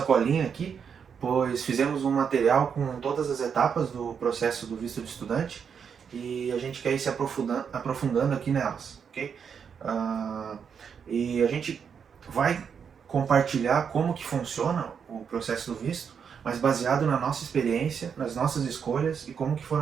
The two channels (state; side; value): quieter; left; 6.9 dB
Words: colinha aqui, pois fizemos um material com todas as etapas do processo do visto de estudante e a gente quer ir se aprofundando aqui nelas, ok? E a gente vai compartilhar como que funciona o processo do visto, mas baseado na nossa experiência, nas nossas escolhas e como que